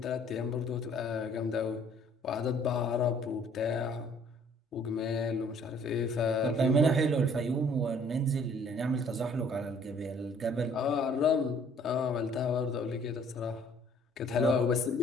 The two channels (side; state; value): both; normal; correlation 0.58